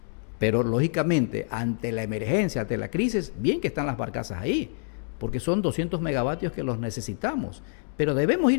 pero lógicamente, ante la emergencia, ante la crisis, bien que están las barcazas ahí, porque son 200 megavatios que los necesitamos. Pero debemos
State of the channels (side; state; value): right; silent; digital silence